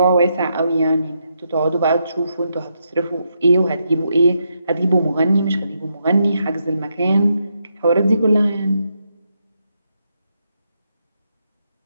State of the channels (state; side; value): inverted; both; correlation -0.81